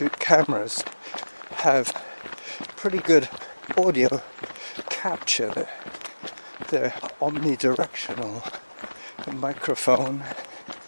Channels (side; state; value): both; inverted; correlation -1.00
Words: cameras have pretty good audio capture. They're omnidirectional. A microphone,